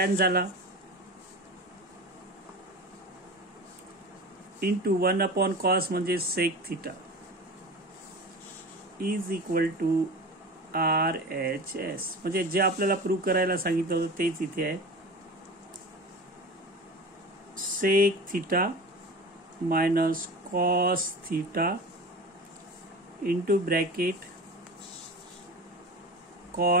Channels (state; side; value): normal; both; correlation 0.32